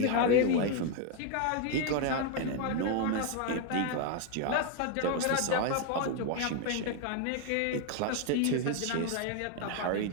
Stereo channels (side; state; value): both; different; correlation 0.01